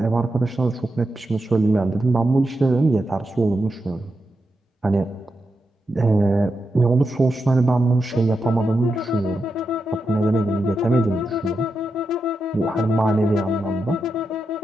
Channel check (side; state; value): both; normal; correlation 0.87